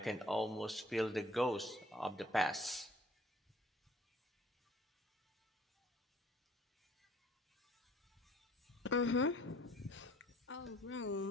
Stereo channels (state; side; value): normal; both; correlation 0.57